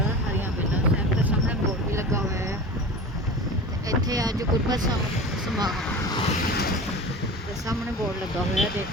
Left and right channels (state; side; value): normal; both; correlation 0.33